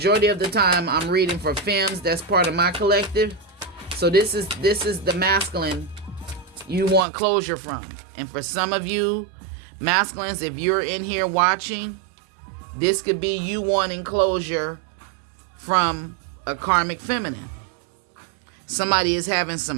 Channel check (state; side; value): drops out; left; at 7.1 s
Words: of the time I'm reading for femmes. That's part of my collective. So this is the masculine you want closure from. And for some of you masculines, if you're in here watching, this could be you wanting closure from a karmic feminine. Somebody is having